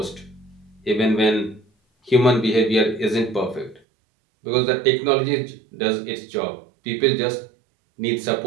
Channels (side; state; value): left; drops out; at 3.8 s